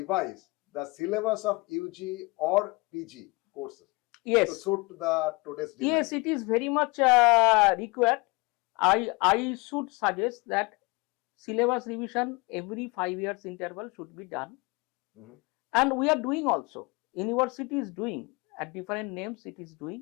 the syllabus of UG or PG courses? Yes. To suit the today's demand? Yes, it is very much required. I should suggest that syllabus revision every 5 years interval should be done. And we are doing also. University is doing at different names, it is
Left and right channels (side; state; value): right; quieter; 26.5 dB